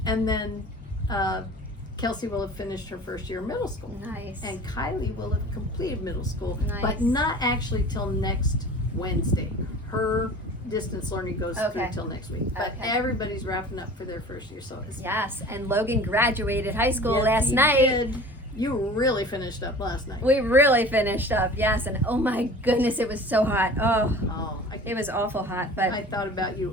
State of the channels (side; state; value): both; normal; correlation 0.41